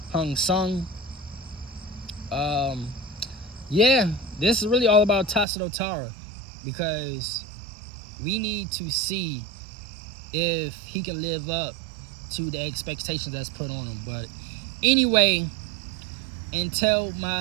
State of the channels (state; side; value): drops out; left; at 5.5 s